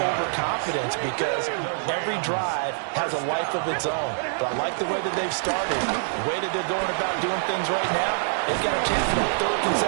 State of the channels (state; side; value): silent; left; digital silence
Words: because every drive has a life of its own. But I like the way that they've started, the way that they're going about doing things right now. They've got a chance for a 3rd